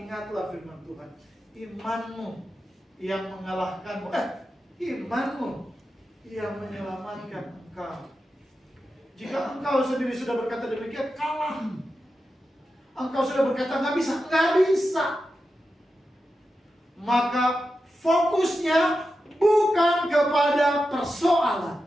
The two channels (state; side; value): normal; both; correlation 0.90